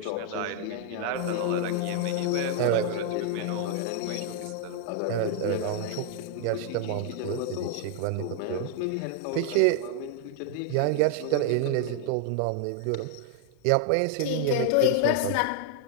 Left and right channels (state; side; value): different; both; correlation 0.00